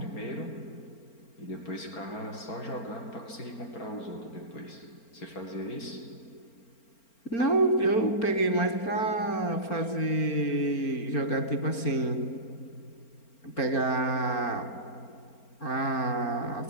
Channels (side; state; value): right; late; 4.4 ms